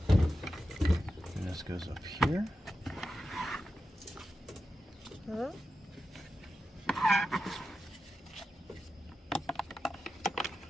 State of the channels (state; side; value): normal; both; correlation 0.91